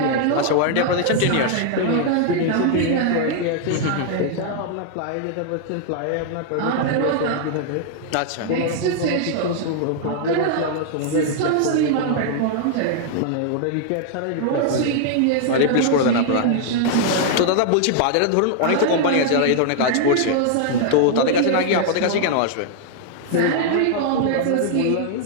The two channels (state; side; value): different; both; correlation -0.01